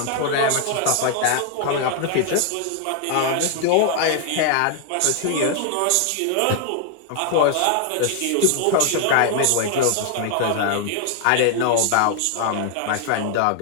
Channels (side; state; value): both; different; correlation 0.00